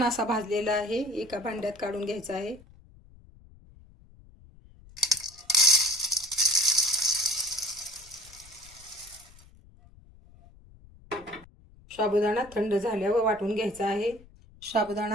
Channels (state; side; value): noise; left; rumble, 24 dB below the sound